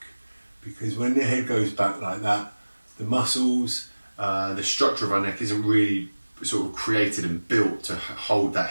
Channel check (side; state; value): both; inverted; correlation -1.00